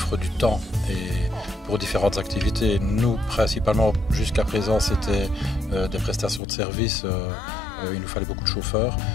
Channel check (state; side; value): drops out; right; at 6.4 s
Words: du temps et pour différentes activités. Nous, principalement, jusqu'à présent, c'était des prestations de services. Il nous fallait beaucoup de chauffeurs.